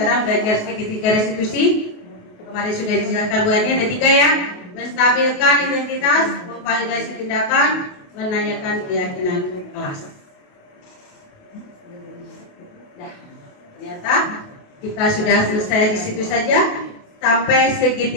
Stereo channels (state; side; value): late; right; 28 ms